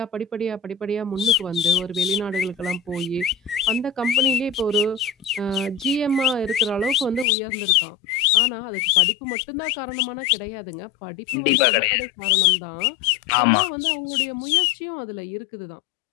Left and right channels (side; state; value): right; drops out; at 7.2 s